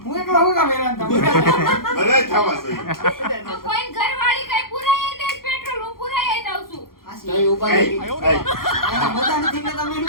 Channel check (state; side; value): late; right; 0.92 ms